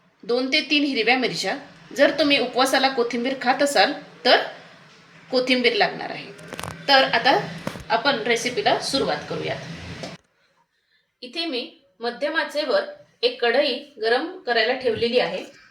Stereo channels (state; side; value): identical; both; correlation 1.00